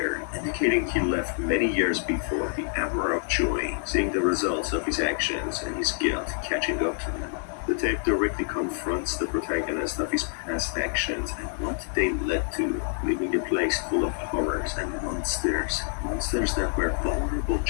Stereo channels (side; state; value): right; silent; 60 dB below the other